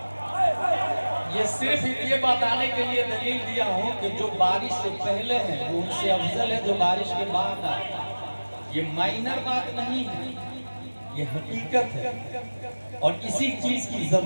یہ صرف یہ بتانے کے لیے دلیل دیا ہوں کہ جو بارش سے پہلے ہیں وہ ان سے افضل ہے جو بارش کے بعد آئے۔ یہ مائنر بات نہیں ہے، یہ حقیقت ہے، اور اسی چیز کی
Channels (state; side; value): inverted; both; correlation -1.00